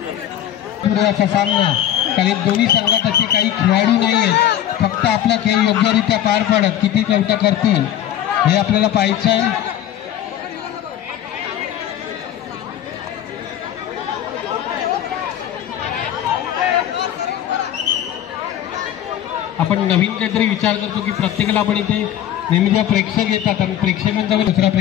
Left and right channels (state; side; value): quieter; right; 11.2 dB